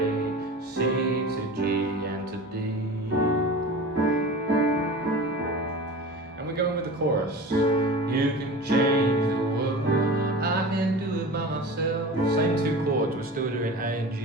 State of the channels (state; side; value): normal; both; correlation 0.34